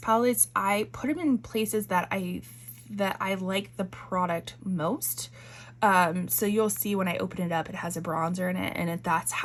I put them in places that I like the product most. So you'll see when I open it up, it has a bronzer in it, and that's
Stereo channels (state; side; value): identical; both; correlation 1.00